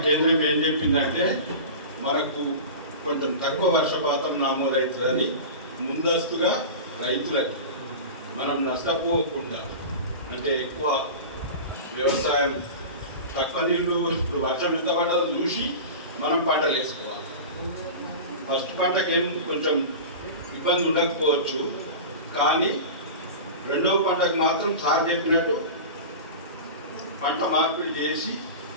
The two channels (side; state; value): both; inverted; correlation -0.31